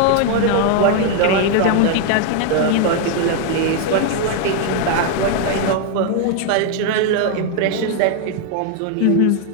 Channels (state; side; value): different; both; correlation 0.00